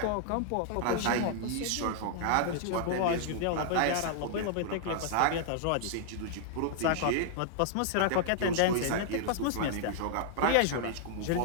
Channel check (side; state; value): both; different; correlation -0.01